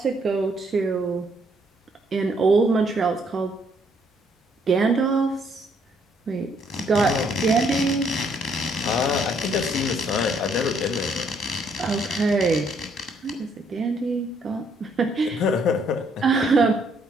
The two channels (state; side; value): normal; both; correlation 0.69